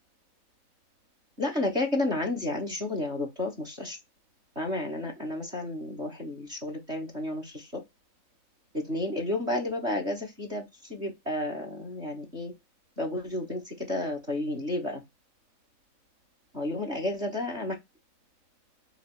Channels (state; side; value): late; left; 3.2 ms